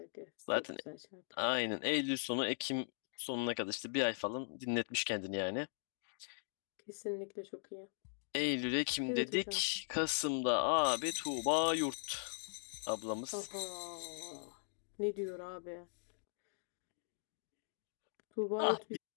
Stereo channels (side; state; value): right; silent; digital silence